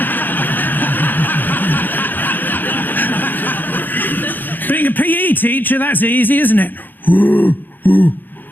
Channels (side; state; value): right; late; 0.089 ms